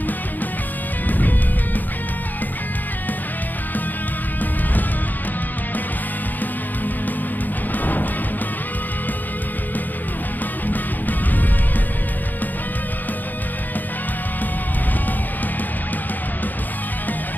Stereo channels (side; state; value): right; late; 0.086 ms